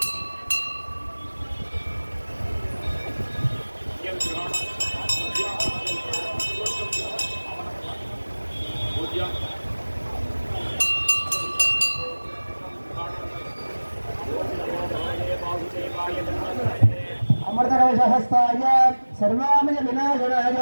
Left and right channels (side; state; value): both; inverted; correlation -1.00